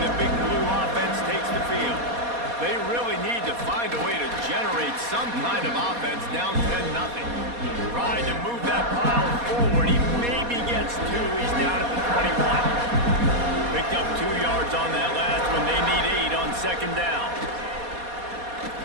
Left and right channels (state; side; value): late; left; 4.2 ms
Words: Big Blue offense takes the field. They really need to find a way to generate some kind of offense down 10-0. Tried to move that pile forward. He maybe gets 2. He's down at the 21. Picked up 2 yards on that last one. They need 8 on 2nd down.